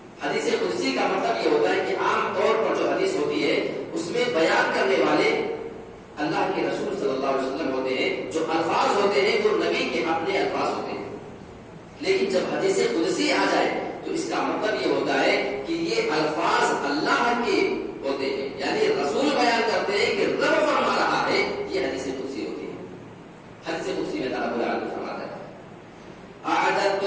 حدیث قدسی کا مطلب یہ ہوتا ہے کہ عام طور پر جو حدیث ہوتی ہے اس میں بیان کرنے والے اللہ کے رسول صلی اللہ علیہ وسلم ہوتے ہیں، جو الفاظ ہوتے ہیں وہ نبی کے اپنے الفاظ ہوتے ہیں۔ لیکن جب حدیث قدسی آ جائے تو اس کا مطلب یہ ہوتا ہے کہ یہ الفاظ اللہ کے ہوتے ہیں، یعنی رسول بیان کرتے ہیں کہ رب فرما رہا ہے، یہ حدیث قدسی ہوتی ہے۔ حدیث قدسی میں اللہ رب العالمین فرماتا ہے اعددت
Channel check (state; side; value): identical; both; correlation 1.00